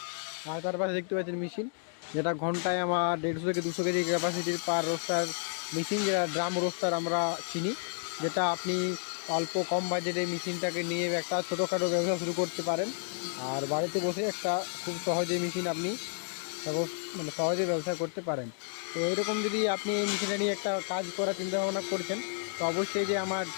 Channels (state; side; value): silent; right; 57 dB below the other